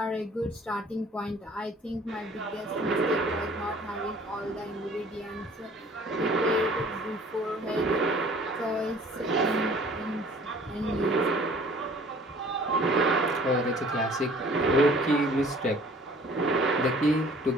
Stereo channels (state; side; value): normal; both; correlation 0.52